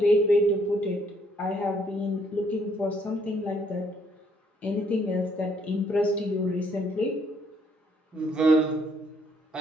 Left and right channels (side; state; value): both; normal; correlation 0.68